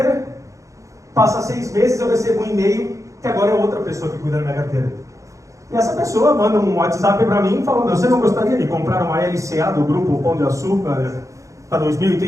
passa 6 meses, eu recebo um e-mail que agora é outra pessoa que cuida da minha carteira. E essa pessoa manda um WhatsApp para mim falando: você não gostaria de comprar uma LCA do Grupo Pão de Açúcar para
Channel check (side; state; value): left; late; 0.15 ms